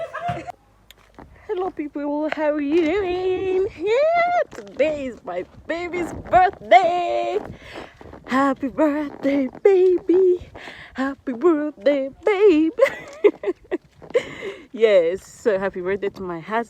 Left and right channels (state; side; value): identical; both; correlation 1.00